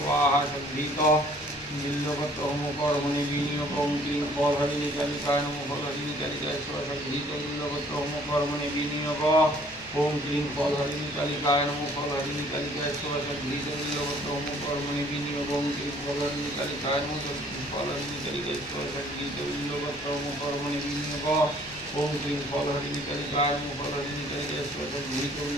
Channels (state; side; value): noise; left; hum, 27 dB below the sound